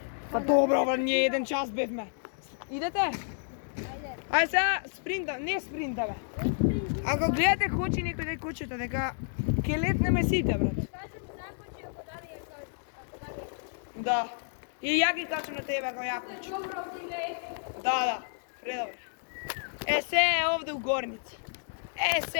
Па добро, бе, ние 1 час бевме. Идете? Ајде. Ај сега спринта, не спринта бе. Ако гледате хочи некој да кучета дека ќе летнеме сите, брат. Кажем закочи ако дали е кој. Ако дали е кој. Да. И ја ги качам на тебе ако ја кучи. Добро, ти не е. Да, предобро. Е, се е овде у горница. Е,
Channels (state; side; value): silent; right; digital silence